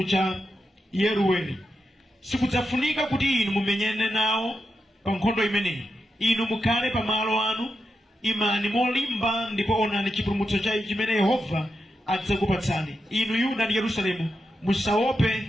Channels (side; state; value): both; normal; correlation 0.87